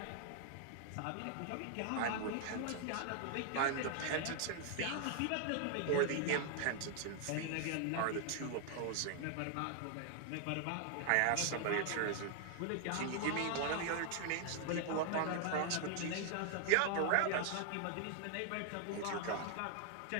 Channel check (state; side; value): different; both; correlation 0.00